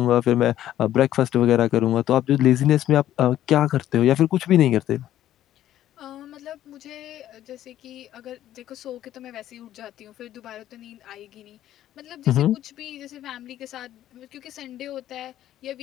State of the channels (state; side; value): quieter; right; 12.5 dB